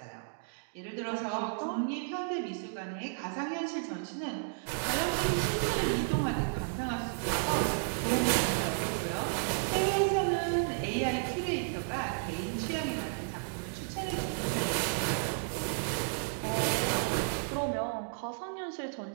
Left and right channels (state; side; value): silent; left; digital silence